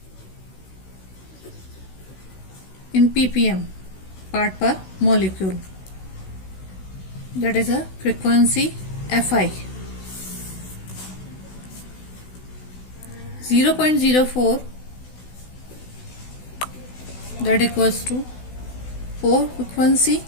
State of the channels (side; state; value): right; late; 16 ms